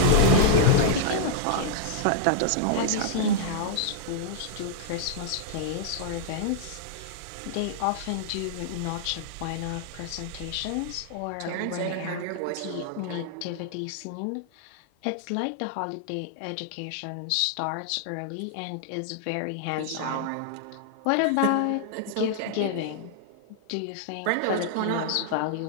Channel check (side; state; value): both; different; correlation -0.01